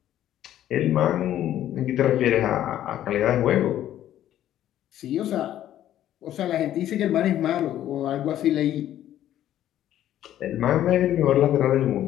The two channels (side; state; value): right; quieter; 12.1 dB